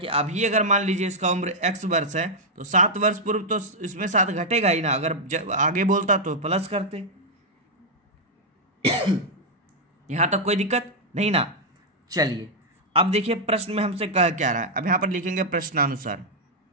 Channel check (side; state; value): both; normal; correlation -0.03